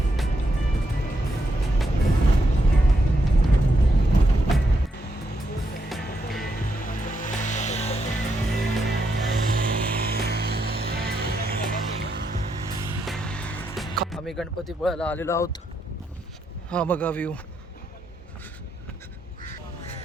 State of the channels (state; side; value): normal; both; correlation 0.80